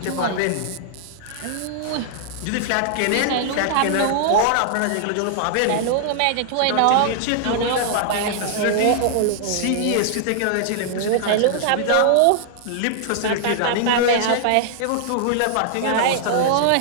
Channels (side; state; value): both; different; correlation -0.01